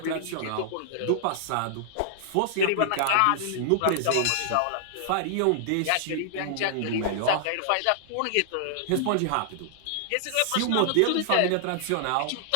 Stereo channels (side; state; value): both; different; correlation -0.01